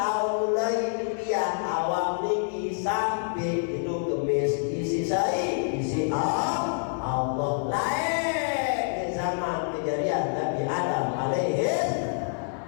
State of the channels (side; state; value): right; silent; 60 dB below the other